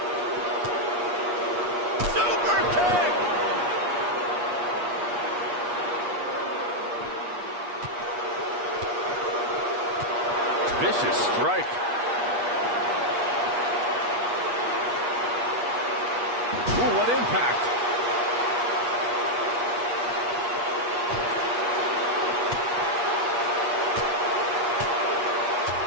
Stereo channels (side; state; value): left; late; 8.4 ms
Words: Super kick! Vicious strike. Ooh, what impact.